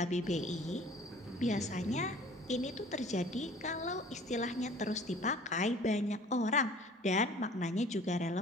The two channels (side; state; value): both; normal; correlation 0.49